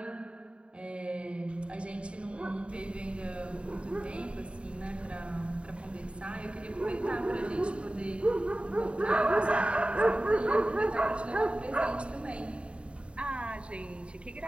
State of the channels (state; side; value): late; left; 0.057 ms